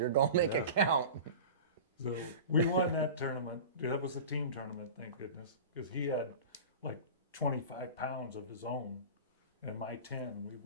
gonna make it count. So we won that tournament. That was a team tournament, thank goodness, because he had like 25 pounds of his own and my 10, and we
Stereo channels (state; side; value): inverted; both; correlation -0.33